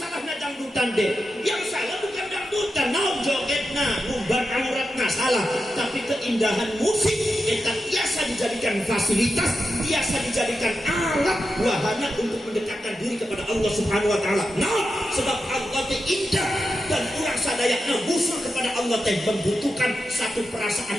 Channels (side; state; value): both; normal; correlation 0.89